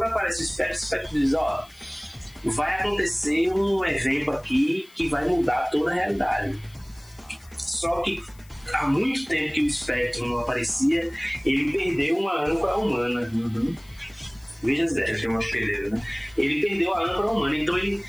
aparece o espectro diz, vai acontecer um evento aqui que vai mudar toda a realidade. Só que há muito tempo que o Spectrum não aparecia, ele perdeu uma âncora humana. Veja Zé. Ele perdeu a âncora humana, então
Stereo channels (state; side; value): noise; left; hiss, 27 dB below the sound